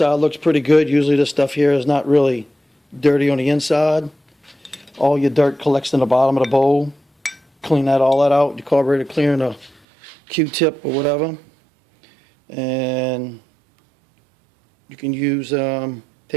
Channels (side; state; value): left; drops out; at 9.8 s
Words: looks pretty good. Usually this stuff here is not really dirty on the inside. All your dirt collects in the bottom of the bowl. Clean all that out. Your carburetor clearing a Q-tip or whatever. And you can use,